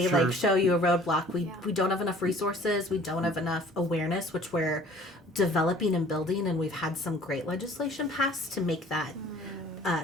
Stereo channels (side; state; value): both; normal; correlation 0.51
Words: Sure. like show you a roadblock. We don't have enough resources. We don't have enough awareness, which we're developing and building, and we've had some great legislation passed to make that